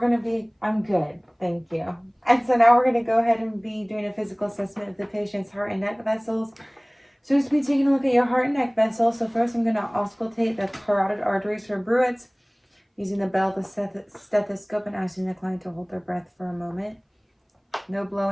I'm good, thank you. And so now we're gonna go ahead and be doing a physical assessment of the patient's heart and neck vessels. So just be taking a look at your heart and neck vessels. So first I'm gonna auscultate the carotid arteries for bruits using the bell, the stethoscope, and asking the client to hold their breath for a moment. No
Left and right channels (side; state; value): both; identical; correlation 1.00